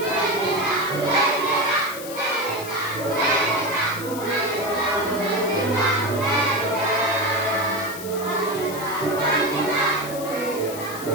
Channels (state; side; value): noise; left; hiss, 12 dB below the sound